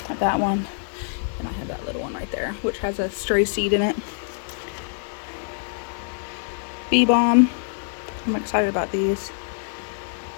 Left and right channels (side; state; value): right; silent; digital silence